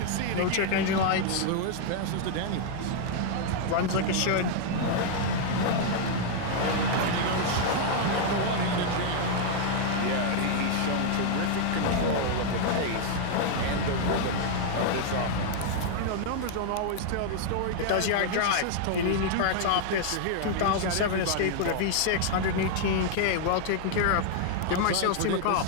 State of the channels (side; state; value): both; different; correlation 0.00